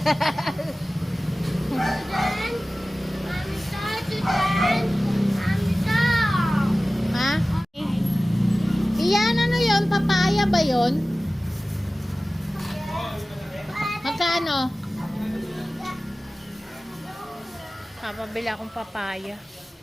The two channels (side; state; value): both; normal; correlation 0.97